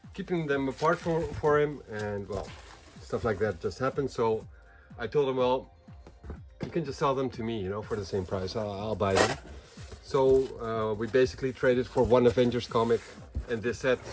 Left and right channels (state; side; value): identical; both; correlation 1.00